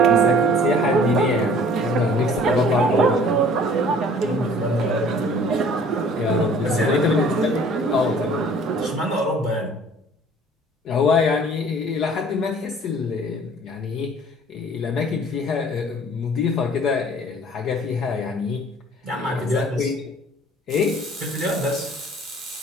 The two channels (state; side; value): normal; both; correlation 0.51